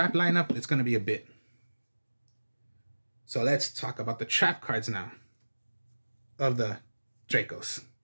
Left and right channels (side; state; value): both; inverted; correlation -1.00